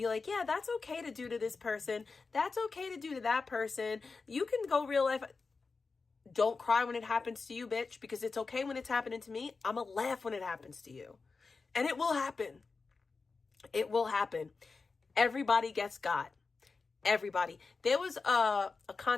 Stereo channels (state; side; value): quieter; right; 4.4 dB